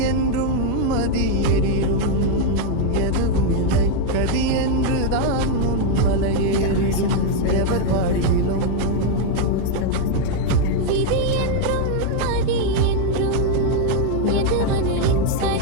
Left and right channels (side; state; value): both; different; correlation 0.00